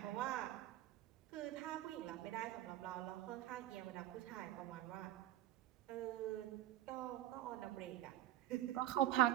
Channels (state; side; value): quieter; left; 13.6 dB